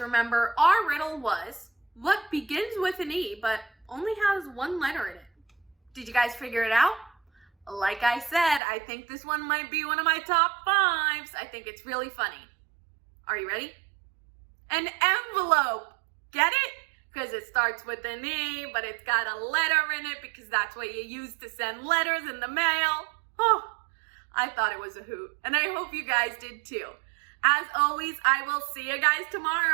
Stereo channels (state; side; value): drops out; left; at 8.6 s